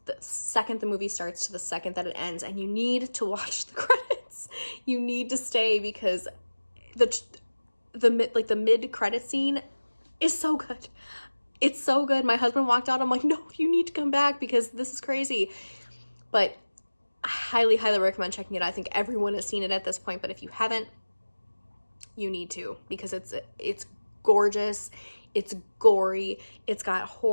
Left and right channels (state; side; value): inverted; both; correlation -1.00